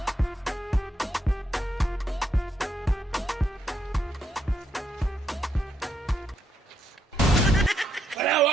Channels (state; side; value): normal; both; correlation 0.77